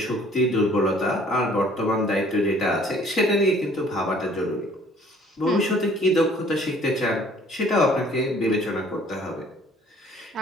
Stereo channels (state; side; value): normal; both; correlation 0.56